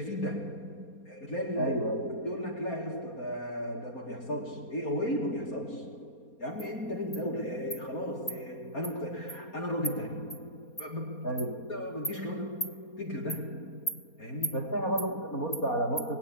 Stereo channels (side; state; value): right; late; 4.3 ms